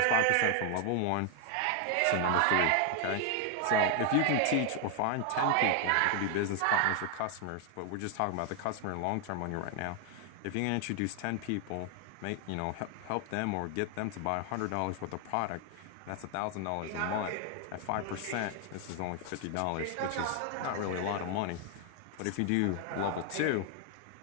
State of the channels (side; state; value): both; different; correlation 0.00